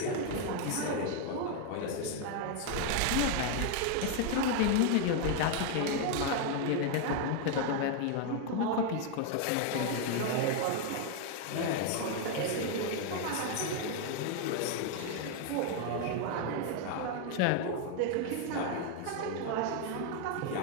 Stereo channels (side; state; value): both; different; correlation 0.01